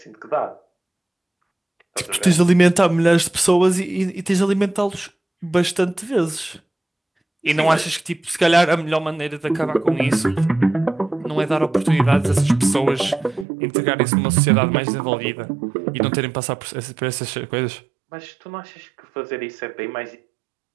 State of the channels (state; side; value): drops out; left; at 13.5 s